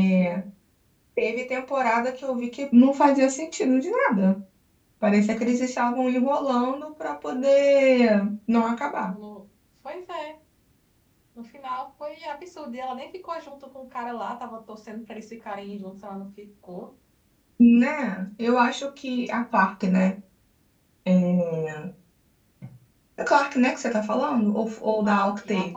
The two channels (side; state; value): both; identical; correlation 1.00